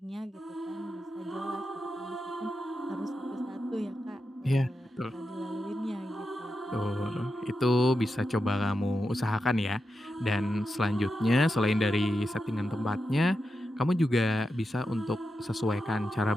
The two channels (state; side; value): normal; both; correlation 0.89